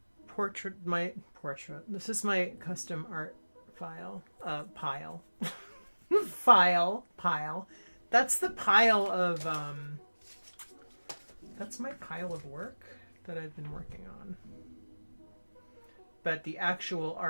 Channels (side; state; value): both; inverted; correlation -1.00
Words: portrait. This is my custom art pile. Pile. That's the pile of, that's my pile of work that I've been working on. But the actual